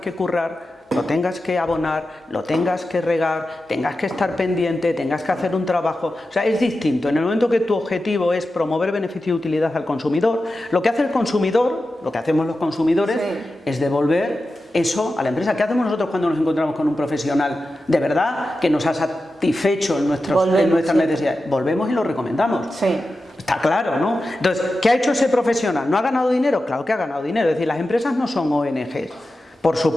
currar, lo tengas que abonar, lo tengas que regar, tengas que estar pendiente, tengas que hacer un trabajo. O sea, es distinto. En el momento que tu objetivo es promover beneficio y utilidad al consumidor, lo que hace el consumidor, lo que hacemos los consumidores, es devolver eso a la empresa. ¿Qué hacemos nosotros cuando nos encontramos con un profesional de verdad que nos ha satisfecho en nuestras necesidades? Volvemos y lo recomendamos. Sí. Está claro, ¿no? Entonces, ¿qué ha hecho ese profesional? ¿No ha ganado dinero? Claro que ha ganado dinero. Es decir, las empresas no son ONGs. Por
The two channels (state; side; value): normal; both; correlation 0.92